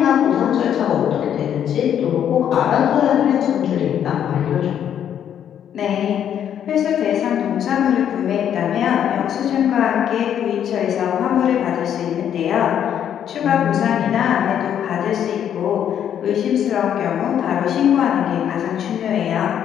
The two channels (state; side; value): quieter; right; 9.5 dB